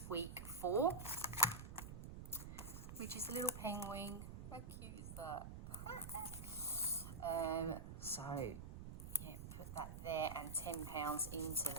week 4, which is a little penguin. How cute is that? So yeah, put that there and £10 into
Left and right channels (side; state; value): right; noise; rumble, 9 dB below the sound